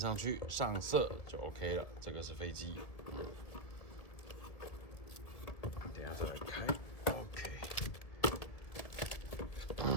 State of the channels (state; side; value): late; right; 1.9 ms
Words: 去上色就 OK 了。这个是飞机，等一下再来开。OK，